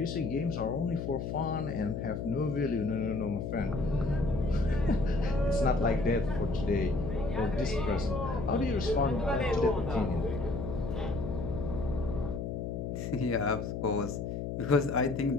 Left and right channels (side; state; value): left; noise; hum, 4 dB below the sound